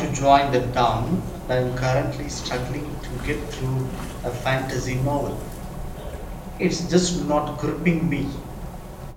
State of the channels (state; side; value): identical; both; correlation 1.00